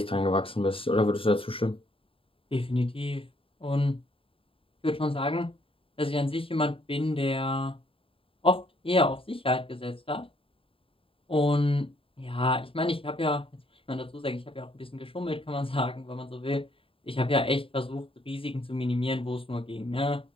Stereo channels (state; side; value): late; right; 0.26 ms